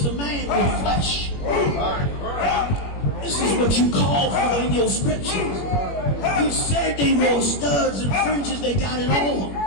a man with flesh. This is what you called for in your scriptures. You said they wore studs and fringes, they got it on.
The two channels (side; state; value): right; late; 21 ms